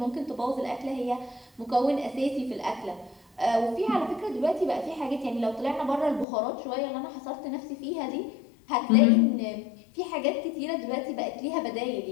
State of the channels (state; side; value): drops out; right; at 6.2 s